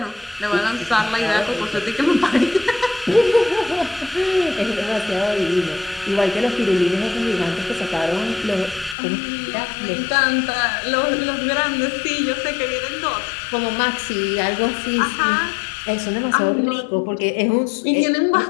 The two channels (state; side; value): drops out; right; at 9.0 s